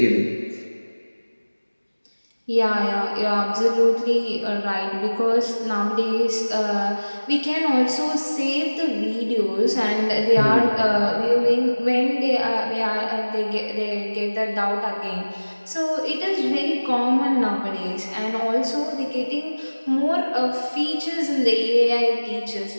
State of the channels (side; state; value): both; inverted; correlation -1.00